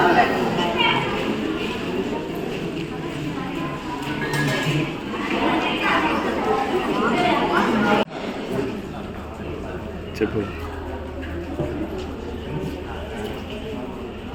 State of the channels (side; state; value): both; identical; correlation 1.00